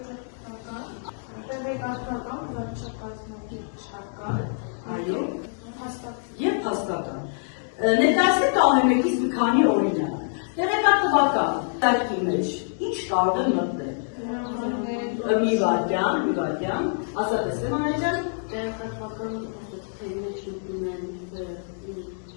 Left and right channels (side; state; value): right; silent; digital silence